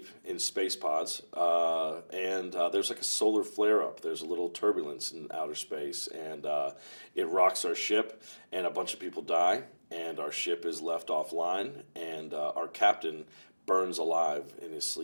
in space pods, and there's like a solar flare up. There's a little turbulence in outer space, and it rocks our ship, and a bunch of people die, and our ship is left offline, and our captain burns alive in his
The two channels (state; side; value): inverted; both; correlation -1.00